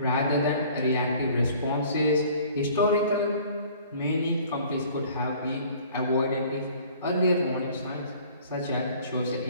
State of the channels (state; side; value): inverted; both; correlation -0.52